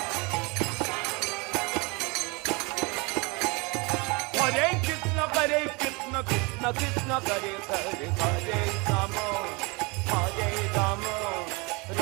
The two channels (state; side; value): quieter; left; 27.8 dB